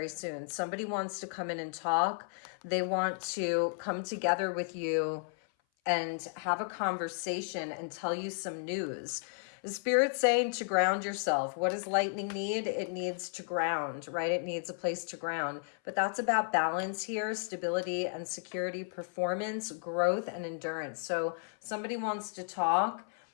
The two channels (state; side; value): silent; right; 55 dB below the other